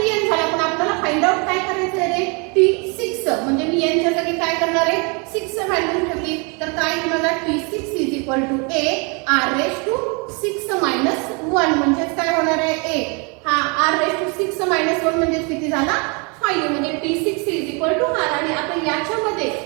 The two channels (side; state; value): left; quieter; 32.9 dB